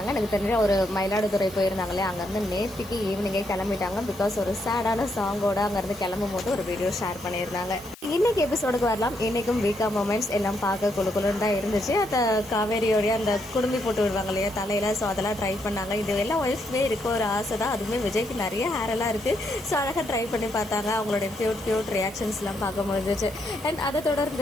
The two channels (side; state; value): left; noise; hiss, 21 dB below the sound